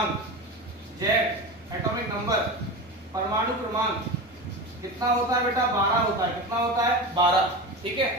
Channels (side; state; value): both; normal; correlation 0.26